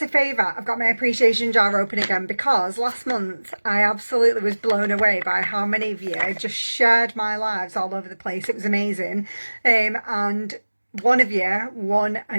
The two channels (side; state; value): both; inverted; correlation -1.00